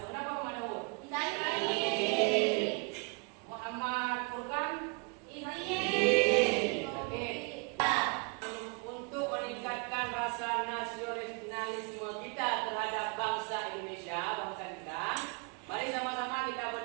kenapa Mama Daud? Sakit. Muhammad Furkan? Izin. Oke. Untuk meningkatkan rasa nasionalisme kita terhadap bangsa Indonesia, bangsa kita, mari sama-sama kita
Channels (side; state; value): left; quieter; 33.0 dB